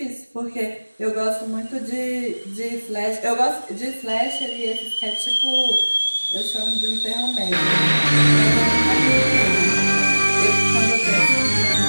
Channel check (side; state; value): both; inverted; correlation -1.00